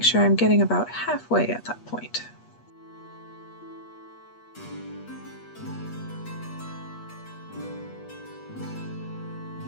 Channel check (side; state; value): right; late; 8.4 ms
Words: sure I'm getting about halfway at that point.